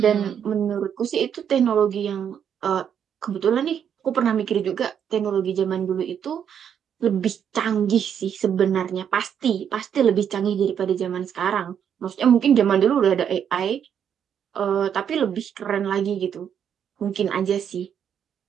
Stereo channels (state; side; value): quieter; left; 8.4 dB